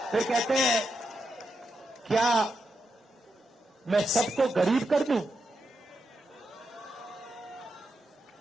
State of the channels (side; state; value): both; normal; correlation 0.85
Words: फिर कहते हैं, क्या मैं सबको गरीब कर दूं?